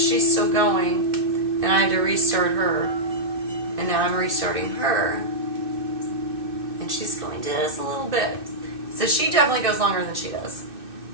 still going, and I had to restart her. And now I'm restarting her, and she's going just a little bit. So she definitely goes longer than she does,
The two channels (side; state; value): left; late; 2.6 ms